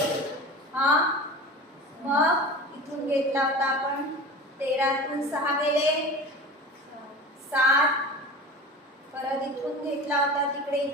मग इथून घेतला होता आपण 13तून 6 गेले 7. परत इथून घेतला होता तिकडे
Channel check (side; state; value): both; normal; correlation 0.34